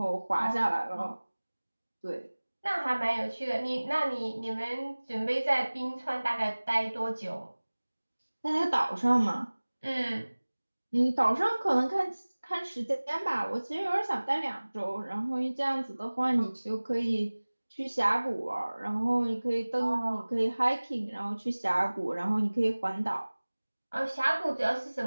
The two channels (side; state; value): both; inverted; correlation -1.00